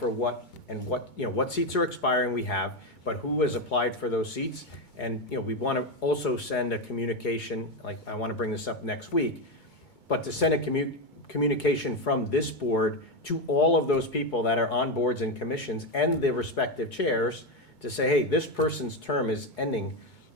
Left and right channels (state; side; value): late; right; 2.2 ms